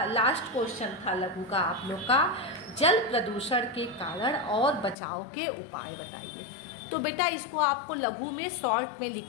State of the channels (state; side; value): drops out; right; at 5.0 s